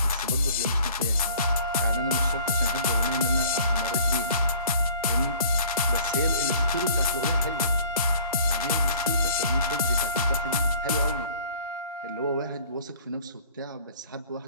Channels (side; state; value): both; inverted; correlation -0.50